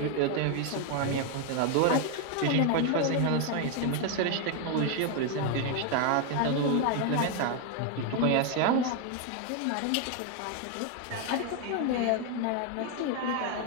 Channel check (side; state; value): both; different; correlation 0.01